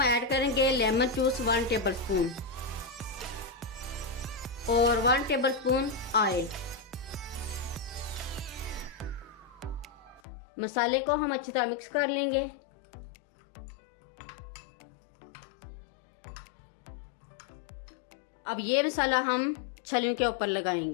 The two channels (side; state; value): right; drops out; at 10.2 s